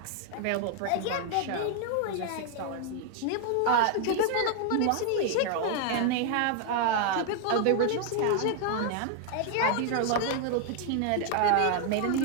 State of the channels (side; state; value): both; different; correlation 0.00